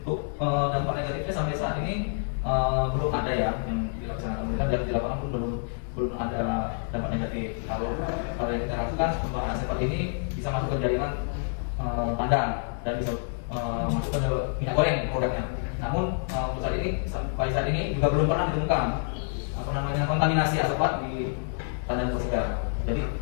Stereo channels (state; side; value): silent; right; digital silence